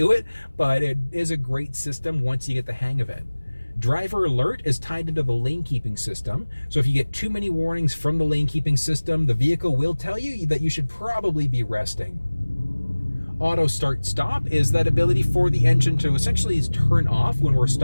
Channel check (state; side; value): inverted; both; correlation -1.00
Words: it, but it is a great system once you get the hang of it. Driver alert is tied into the lane keeping system. So if you get too many warnings from the lane keeping system, the vehicle will tell you that you should probably be resting. Auto start stop is that ability for the engine to essentially turn off when we're